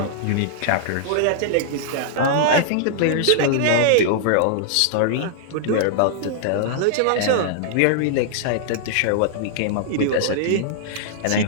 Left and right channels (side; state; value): both; different; correlation -0.01